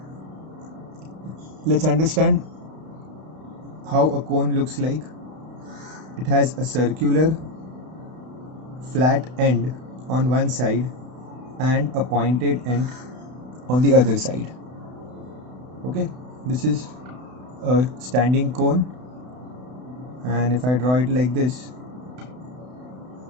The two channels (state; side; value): late; left; 32 ms